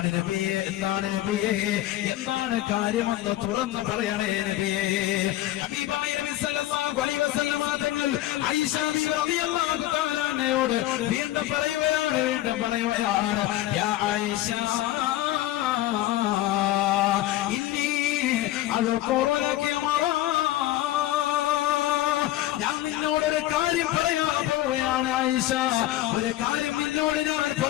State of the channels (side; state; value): right; quieter; 15.0 dB